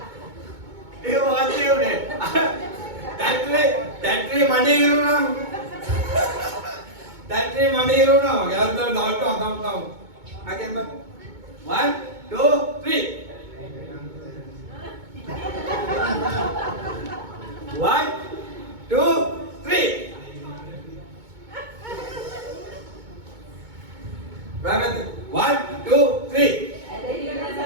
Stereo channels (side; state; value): left; late; 2.2 ms